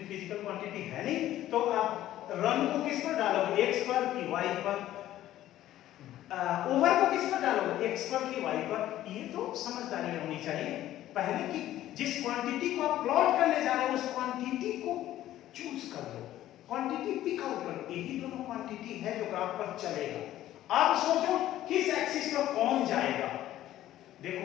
फिजिकल क्वांटिटी है नहीं, तो आप रन को किस पर डालोगे, x पर कि y पर? ओवर को किस पर डालोगे, x पर कि y पर? ये तो समझदारी होनी चाहिए पहले कि जिस क्वांटिटी को आप प्लॉट करने जा रहे हो उस क्वांटिटी को चूज कर लो, क्वांटिटी पिक आउट करो। यही दोनों क्वांटिटी है जो ग्राफ पर चलेगा। अब सोचो किस एक्सिस पर कौन जाएगा।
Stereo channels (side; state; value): right; quieter; 13.5 dB